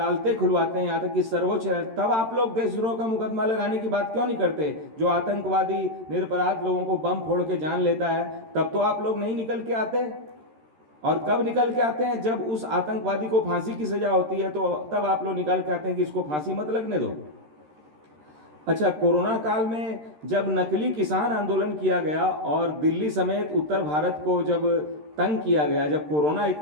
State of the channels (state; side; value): late; left; 13 ms